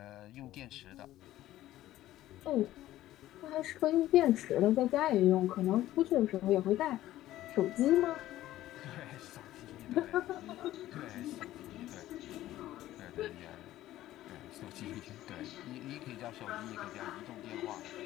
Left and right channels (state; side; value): quieter; right; 14.5 dB